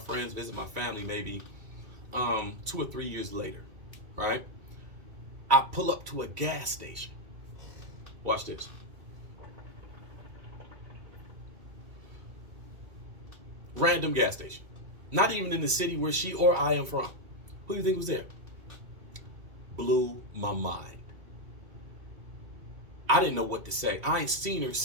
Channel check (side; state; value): left; late; 2.3 ms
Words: visit my family maybe 2 or 3 years later, right? I pull up to a gas station. Watch this. Random gas station. Not even in the city where she or I am from. Who do you think was there? Blew my mind. I didn't know what to say. I ain't seen her